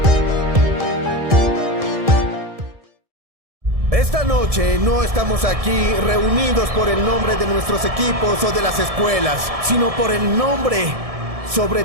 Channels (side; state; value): left; late; 1.7 ms